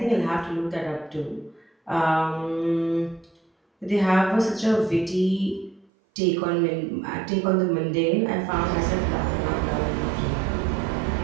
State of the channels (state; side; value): drops out; left; at 5.9 s